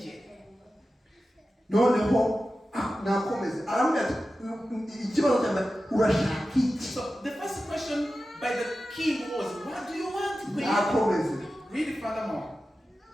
Noneho nakomeze aramubwira ati ikibazo cyane urashaka iki? So the first question by the king was, what do you want, queen? Nakomeze. Read it furthermore.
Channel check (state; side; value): normal; both; correlation 0.93